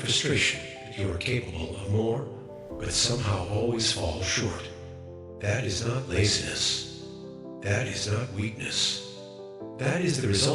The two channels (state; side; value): identical; both; correlation 1.00